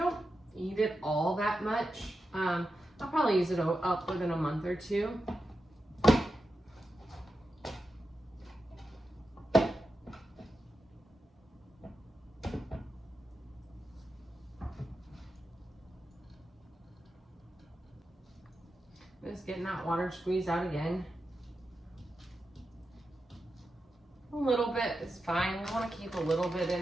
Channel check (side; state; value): both; normal; correlation 0.90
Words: eat it all that much. I'll probably use it up within a month or 2. Just getting that water squeezed out again. A little bit is fine. We want to keep a little bit in